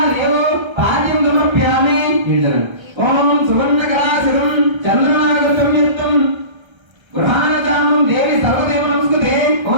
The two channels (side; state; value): left; late; 1.3 ms